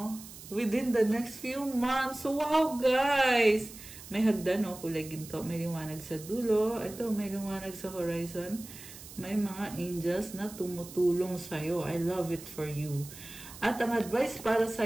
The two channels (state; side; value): noise; right; hiss, 15 dB below the sound